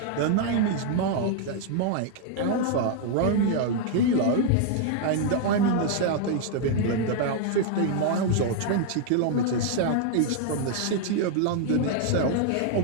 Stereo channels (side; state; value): both; different; correlation 0.00